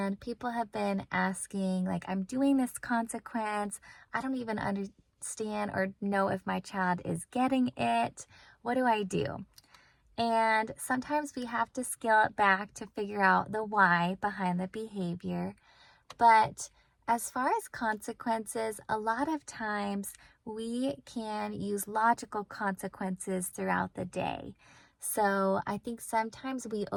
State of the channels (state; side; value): identical; both; correlation 1.00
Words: people have been asking, like, I'm doing this consequence. I don't even understand or know if my child is getting it. What do I do? And sometimes we have to scale it back to figure out the why behind the behavior. But as far as consequences, a lot of times we can use logical consequences throughout the day. So I think sometimes we